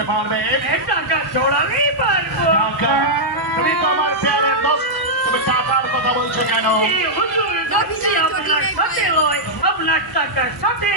পারবে। টাকা চড়ালেই পারবো। টাকা? তুমি তো আমার প্যারের দোস্ত, তুমি টাকার কথা বলছো কেন? হুজুর যাচ্ছি আপনার সাথে লয়, আপনার টাকার সাথে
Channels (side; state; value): both; normal; correlation -0.08